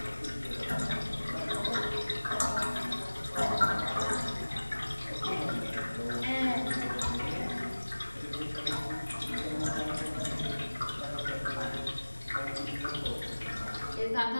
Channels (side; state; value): both; inverted; correlation -1.00